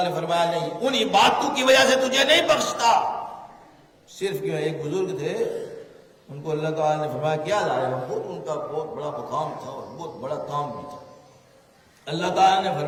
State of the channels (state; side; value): identical; both; correlation 1.00